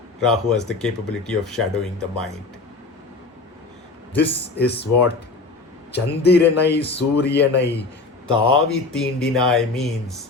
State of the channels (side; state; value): right; quieter; 3.7 dB